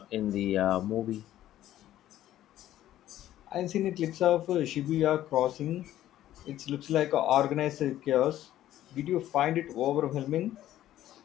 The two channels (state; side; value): quieter; right; 13.1 dB